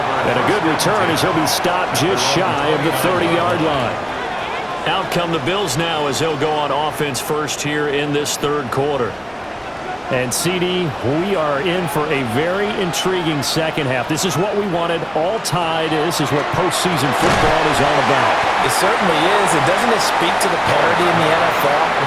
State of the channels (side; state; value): both; identical; correlation 1.00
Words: And a good return as he'll be stopped just shy of the 30-yard line. Out come the Bills now as they'll go on offense first here in this third quarter. And, CD, we are in for a very intriguing second half. This is what we wanted, all tied. This is what postseason football is all about. It certainly is. And doesn't it speak to the parity in the NFL?